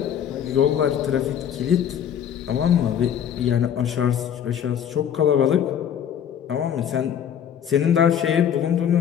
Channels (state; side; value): quieter; right; 9.1 dB